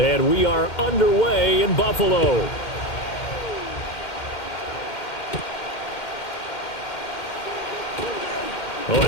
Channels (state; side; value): late; right; 2.1 ms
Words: we are underway in Buffalo. Oh,